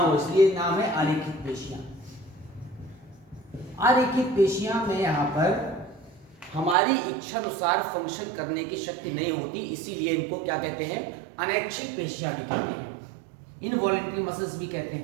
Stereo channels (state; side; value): drops out; left; at 6.8 s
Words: इसलिए नाम है आरेखित पेशियां। आरेखित पेशियां में यहाँ पर हमारी इच्छा अनुसार फंक्शन करने की शक्ति नहीं होती, इसीलिए इनको क्या कहते हैं? अनैच्छिक पेशियां भी कहते हैं। इनवॉलेंट्री मसल्स भी कहते